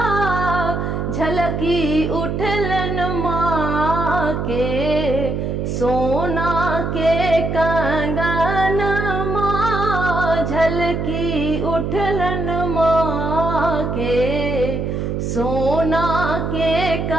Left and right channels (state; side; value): noise; right; hum, 2 dB below the sound